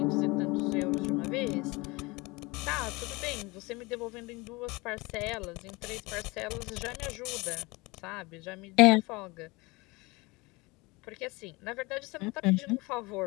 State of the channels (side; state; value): right; quieter; 24.3 dB